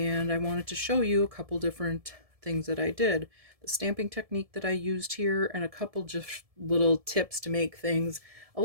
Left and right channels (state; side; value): late; left; 1.7 ms